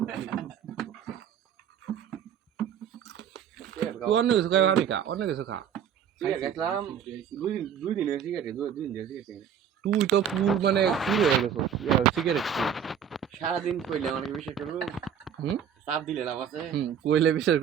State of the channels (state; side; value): quieter; left; 8.3 dB